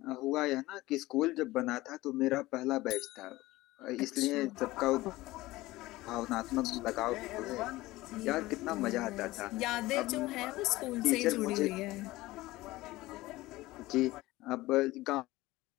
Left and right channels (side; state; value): right; quieter; 18.5 dB